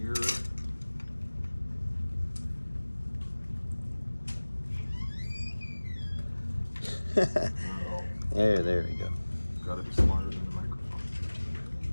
There we go. Gotta be smarter than the microphone.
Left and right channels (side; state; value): both; inverted; correlation -1.00